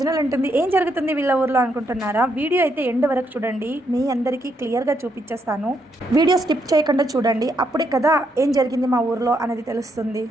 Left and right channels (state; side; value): normal; both; correlation 0.77